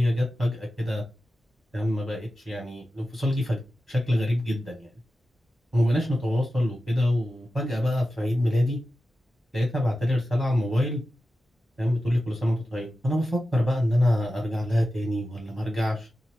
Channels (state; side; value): normal; both; correlation 0.93